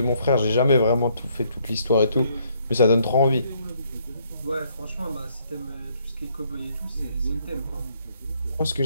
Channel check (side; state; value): both; inverted; correlation -0.68